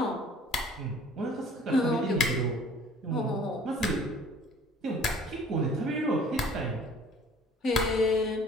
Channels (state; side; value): normal; both; correlation 0.51